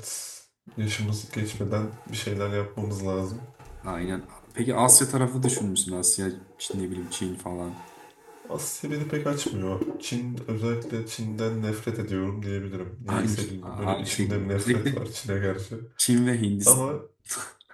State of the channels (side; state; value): both; identical; correlation 1.00